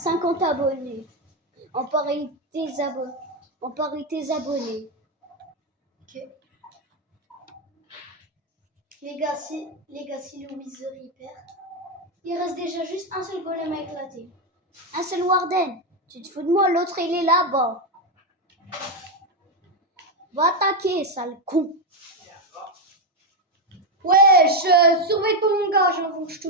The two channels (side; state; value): both; normal; correlation 0.06